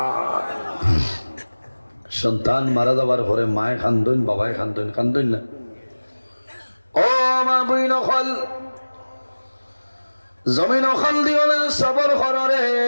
সন্তান মারা যাবার পরে মায় কান্দন, বাবায় কান্দন, কান্দন না? ও মা বইন খল জমিন খাল দিও না, সবর করো রে,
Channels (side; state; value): both; inverted; correlation -1.00